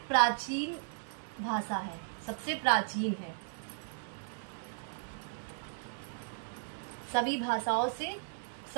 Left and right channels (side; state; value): left; silent; digital silence